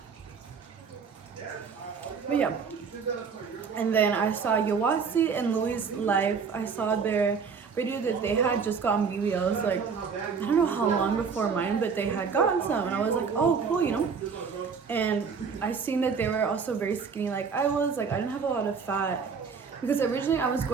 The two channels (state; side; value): quieter; left; 5.8 dB